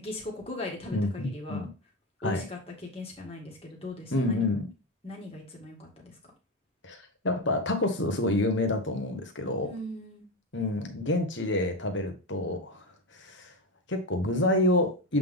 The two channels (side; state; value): both; normal; correlation 0.16